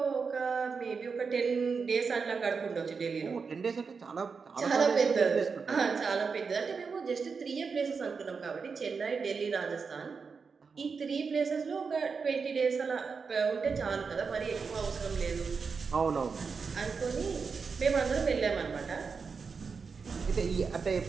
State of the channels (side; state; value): left; quieter; 5.3 dB